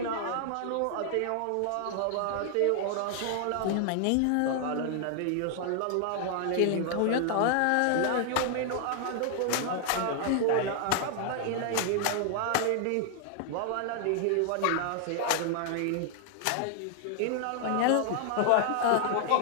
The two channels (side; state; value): both; different; correlation 0.00